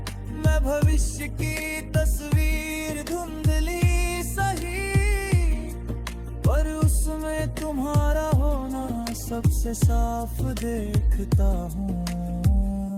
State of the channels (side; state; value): both; identical; correlation 1.00